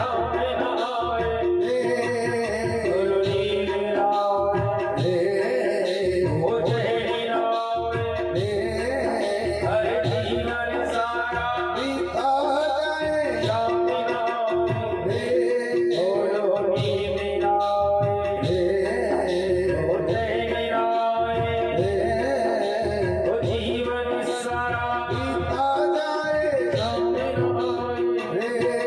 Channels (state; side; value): identical; both; correlation 1.00